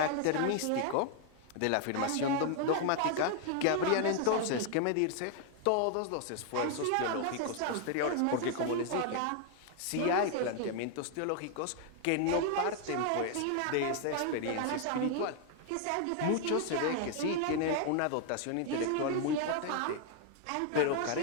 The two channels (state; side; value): different; both; correlation 0.00